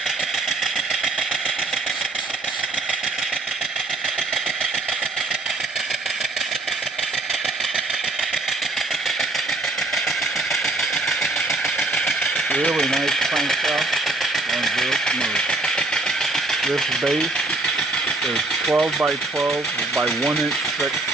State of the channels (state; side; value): quieter; left; 3.1 dB